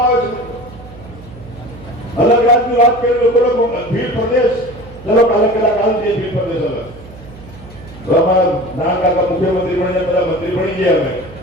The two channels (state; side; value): noise; right; hum, 18 dB below the sound